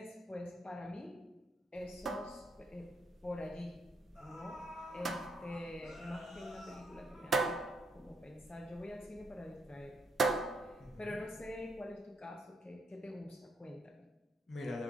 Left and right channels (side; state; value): both; normal; correlation 0.75